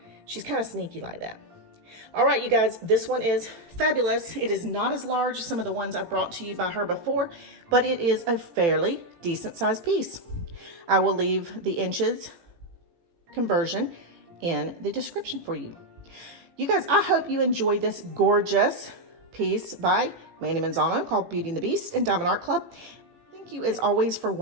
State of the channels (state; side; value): late; left; 18 ms